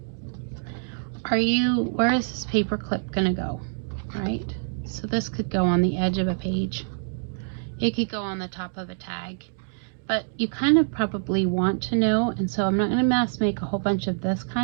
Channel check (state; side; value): silent; left; digital silence